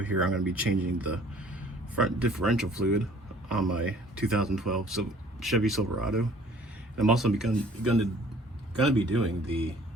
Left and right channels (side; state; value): both; normal; correlation 0.54